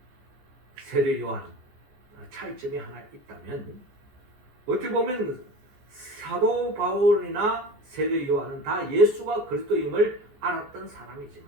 세례 요한 차이점이 하나 있다면 어떻게 보면 사도 바울이나 세례 요한은 다 예수가 그리스도임을 알았던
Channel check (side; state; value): left; late; 14 ms